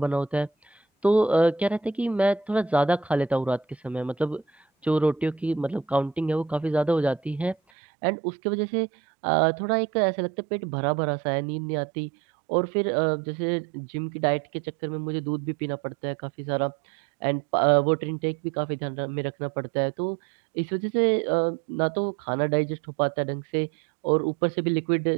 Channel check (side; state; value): left; drops out; at 7.6 s